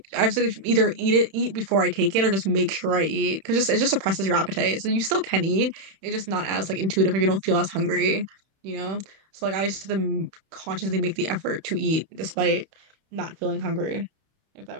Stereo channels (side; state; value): left; late; 31 ms